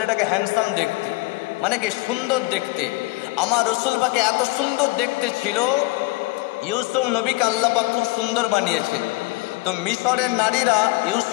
হ্যান্ডসাম দেখতে, মানে কি সুন্দর দেখতে। আমার রসুল পাকে এত সুন্দর দেখতে ছিল, ইউসুফ নবীকে আল্লাহ পাক খুব সুন্দর বানিয়েছেন। তো মিশরের নারীরা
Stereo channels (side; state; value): right; quieter; 21.5 dB